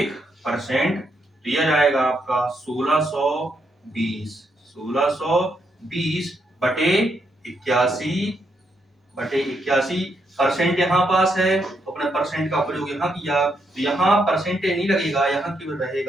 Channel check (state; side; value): normal; both; correlation 0.78